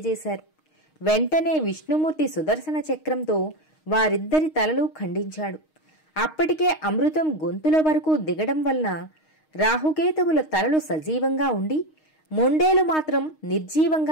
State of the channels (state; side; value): late; right; 6.4 ms